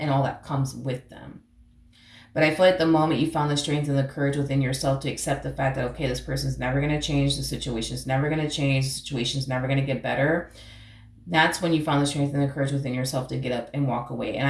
all that comes with them. But I feel like the moment you found the strength and the courage within yourself to accept the fact that, okay, this person's never going to change, the situation's never going to change, the situation's never going to get better, that's when you found the strength and the courage within yourself to get up and walk away. And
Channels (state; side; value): identical; both; correlation 1.00